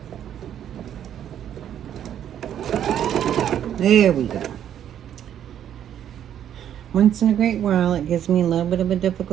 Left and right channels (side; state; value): left; quieter; 10.1 dB